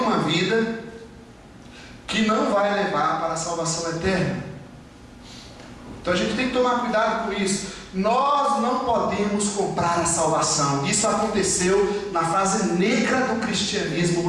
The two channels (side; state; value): both; identical; correlation 1.00